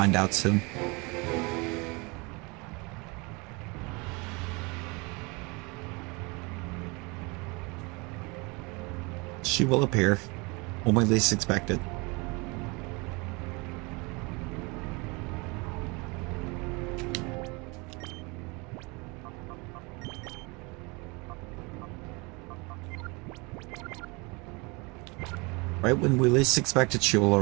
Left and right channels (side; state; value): left; quieter; 27.7 dB